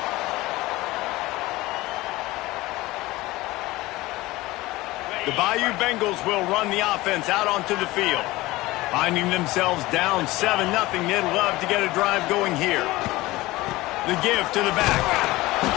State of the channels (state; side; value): quieter; right; 19.3 dB